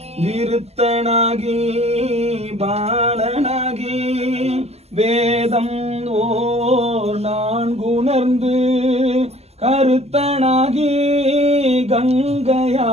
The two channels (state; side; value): late; left; 0.30 ms